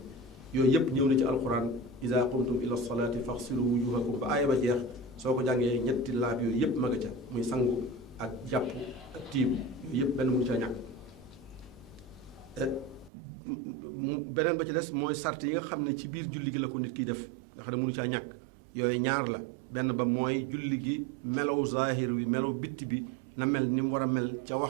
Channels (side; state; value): left; drops out; at 13.1 s